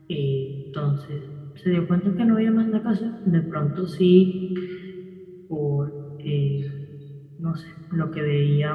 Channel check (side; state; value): both; identical; correlation 1.00